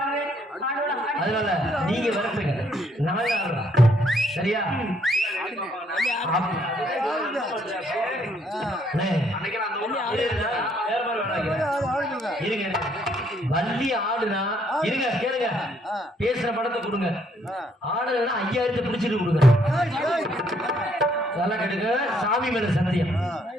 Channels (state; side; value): normal; both; correlation 0.69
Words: அதனால நீங்க வரப்பீங்க நாங்க ஆடுறோம் சரியா இருங்க வள்ளி ஆடுனா இருங்க கேளுங்க பேசுற படத்தை கொடுங்க ஆடுனா 5000 பிடிச்சிட்டு கொடுங்க நல்லா கேட்டுங்க சாமி மேல சத்தியம்